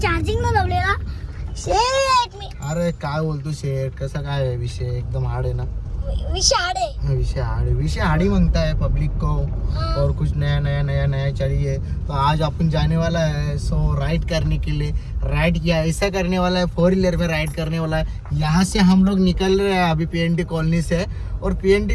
चार्जिंगला लावलेला. शेट मी अरे काय बोलतो शेठ, कसा काय है विषय? एकदम हार्ड है ना विषाड आहे. विषय हार्ड ही मांगता है पब्लिक को. और कुछ नया चाहिए. तो आज अपन जाने वाला है सो राइड करने के लिए. राइड किया ऐसा करने वाला है, 4 व्हीलर में राइड करने वाला है. यहाँ से हम लोग निकल रहे हैं अभी PNT कॉलोनी से. और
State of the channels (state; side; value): identical; both; correlation 1.00